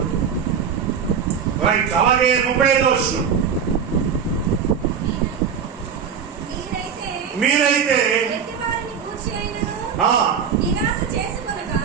రైట్. అలాగే 35వ వచనం, మీరైతే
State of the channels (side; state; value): left; quieter; 7.1 dB